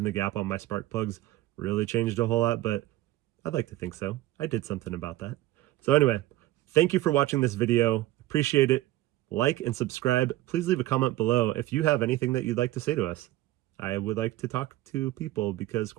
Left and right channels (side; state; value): left; quieter; 15.9 dB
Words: the gap on my spark plugs really changed a whole lot, but I'd like to think so. I did something about that. So anyway, thank you for watching this video. Appreciate it. Like and subscribe. Please leave a comment below if you have anything that you'd like to say to us. I would like to talk to people because